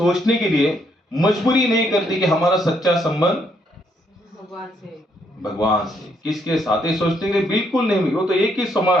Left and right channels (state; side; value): normal; both; correlation 0.72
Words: के लिए मजबूरी नहीं करती कि हमारा सच्चा संबंध भगवान से। किसके साथ? ये सोचने के लिए बिल्कुल नहीं। वो तो एक ही समय